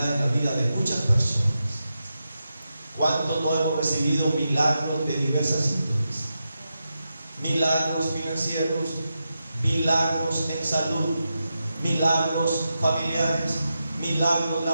en la vida de muchas personas. ¿Cuántos no hemos recibido milagros de diversas índoles? Milagros financieros, milagros en salud, milagros familiares, milagros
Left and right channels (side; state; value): both; inverted; correlation -0.88